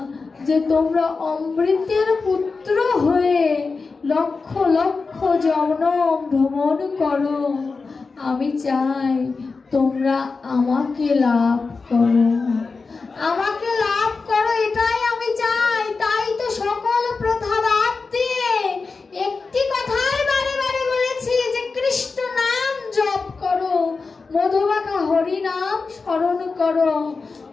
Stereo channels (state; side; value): quieter; right; 4.3 dB